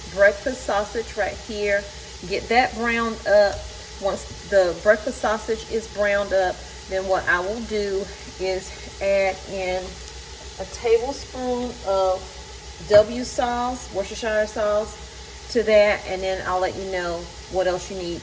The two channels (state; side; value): identical; both; correlation 1.00